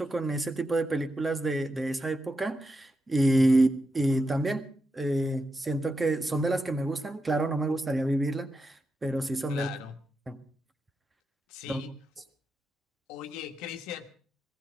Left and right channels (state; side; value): normal; both; correlation 0.87